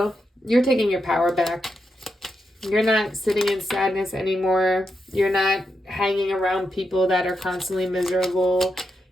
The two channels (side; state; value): both; normal; correlation 0.85